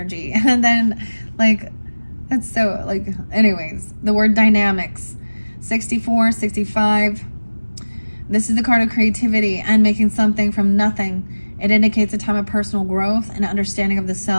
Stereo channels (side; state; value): both; inverted; correlation -1.00